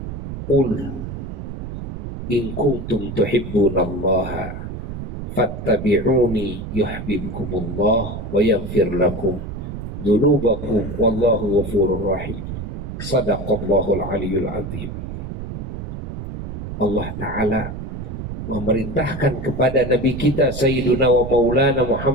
Qul in kuntum tuhibbunallaha fattabi'uni yuhibbukumullah wa yaghfir lakum dzunubakum wallahu ghafurur rahim. Shadaqallahul aliyyul azim. Allah Ta'ala memerintahkan kepada Nabi kita Sayyiduna wa Maulana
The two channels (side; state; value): right; noise; rumble, 7 dB below the sound